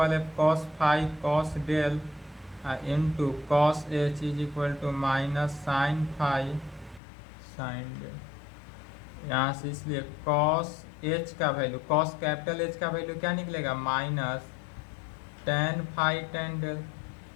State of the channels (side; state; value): right; drops out; at 7.0 s